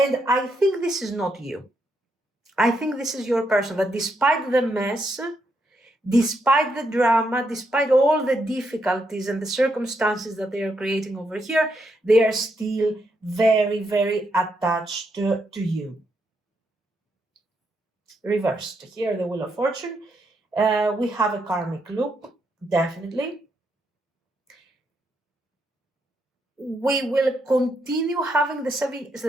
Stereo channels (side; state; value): both; normal; correlation 0.79